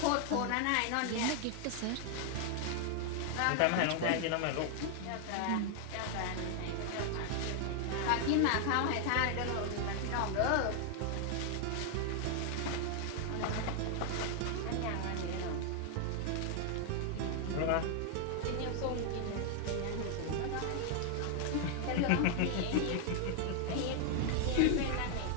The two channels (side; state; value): both; different; correlation 0.00